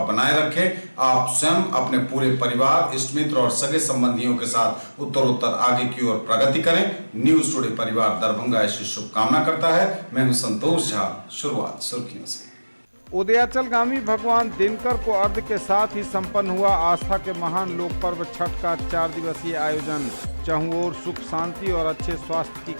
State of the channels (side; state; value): both; inverted; correlation -1.00